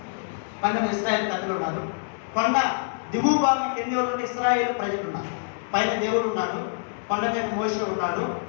ఇశ్రాయేలు ప్రజలు ఉన్నారు. కొండ దిగువ భాగం కింది ఎవరు? ఇశ్రాయేలు ప్రజలు ఉన్నారు. పైన దేవుడు ఉన్నాడు, కొండ మీద మోషే ఉన్నాడు,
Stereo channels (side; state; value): right; silent; digital silence